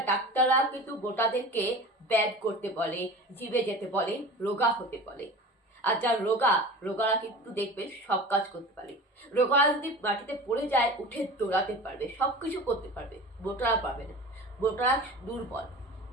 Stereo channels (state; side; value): normal; both; correlation 0.36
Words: ডাক্তাররা কিন্তু মোটাদেরকে ব্যায়াম করতে বলে, জিমে যেতে বলে, রোগা হতে বলে। আর যার রোগারা কিন্তু দেখবেন সব কাজ করতে পারে। রোগারা যদি মাটিতে পড়ে যায় উঠে দৌড়াতে পারবে, সবকিছু করতে পারবে, মোটারা পারবে না। মোটারা দুর্বল,